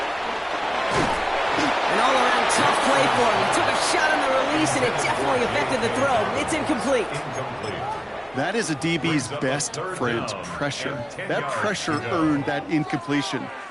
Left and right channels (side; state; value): both; identical; correlation 1.00